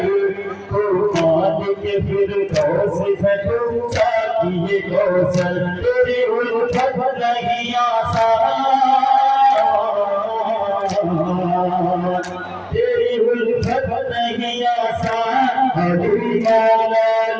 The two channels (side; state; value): both; identical; correlation 1.00